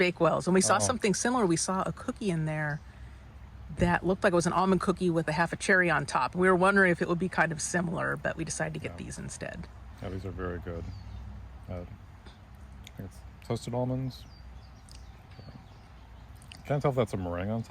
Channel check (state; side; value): identical; both; correlation 1.00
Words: And we saw something similar. We saw a cookie in there that looked like it was an almond cookie with a half a cherry on top. We were wondering if it would be kind of similar, but we decided to get these instead. Yeah, these are very good. I think it's toasted almonds. Can't tell if that's a meringue on